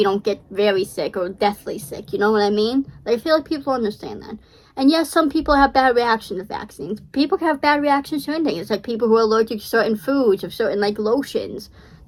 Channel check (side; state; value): both; identical; correlation 1.00